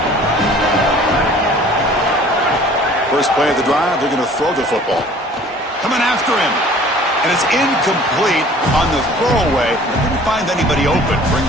First play of the drive, they're going to throw the football. Coming after him. And it's incomplete on the throwaway. Didn't find anybody open.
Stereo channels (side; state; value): both; normal; correlation 0.50